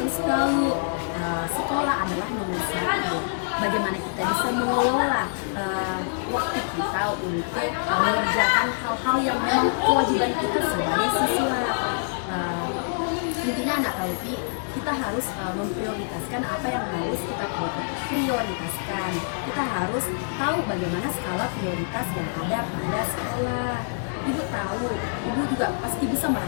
tahu sekolah adalah nomor satu. Bagaimana kita bisa mengelola waktu kita untuk mengerjakan hal-hal yang memang kewajiban kita sebagai siswa. Intinya anak Kalvi, kita harus memprioritaskan apa yang harus kita prioritaskan. Kita harus tahu bagaimana skala prioritas yang ada pada sekolah. Ibu tahu, Ibu juga pasti bisa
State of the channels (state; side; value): silent; right; digital silence